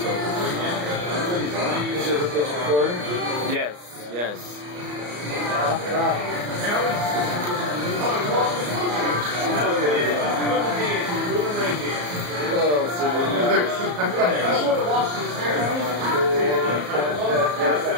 Is it recording? Yes, yes.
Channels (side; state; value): left; late; 34 ms